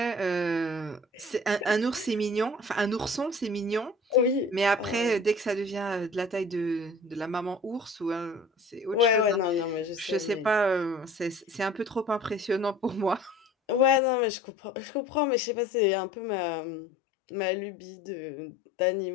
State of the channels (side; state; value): right; drops out; at 14.0 s